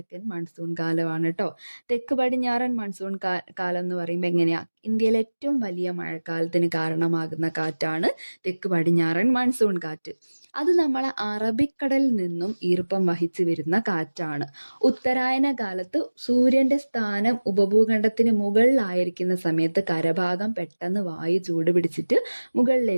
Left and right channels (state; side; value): inverted; both; correlation -1.00